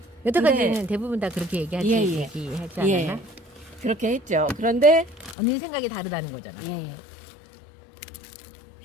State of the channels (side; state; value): right; drops out; at 5.4 s